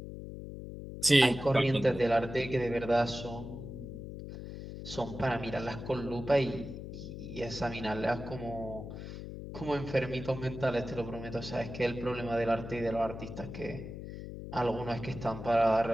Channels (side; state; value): left; noise; hum, 9 dB below the sound